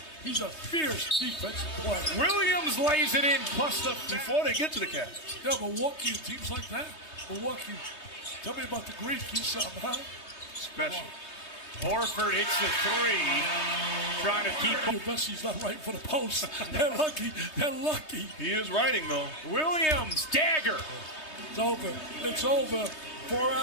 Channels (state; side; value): late; right; 3.2 ms